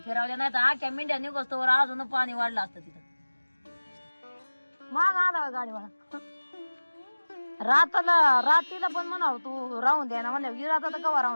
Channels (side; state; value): both; inverted; correlation -1.00